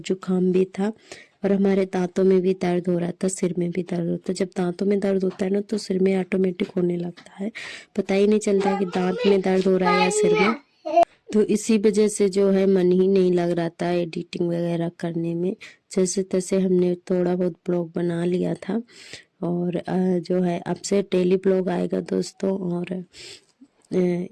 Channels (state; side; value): identical; both; correlation 1.00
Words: भी था। और हमारे दांतों में भी दर्द हो रहा था, सिर में भी दर्द होता है। जब दांतों में दर्द होता है ना, तो सिर में ऑटोमेटिक होने लगता है, पता ही नहीं चलता कि दांत में दर्द हो रहा है या सिर में। तो इसी वजह से जो है मन ही नहीं लग रहा था एडिटिंग वगैरह करने में। जैसे तैसे हमने थोड़ा बहुत ब्लॉग बना लिया था। और जो है अब से डेली ब्लॉग आएगा दोस्तों। और